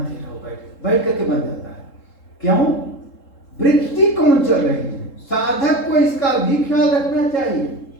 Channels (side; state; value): right; late; 3.7 ms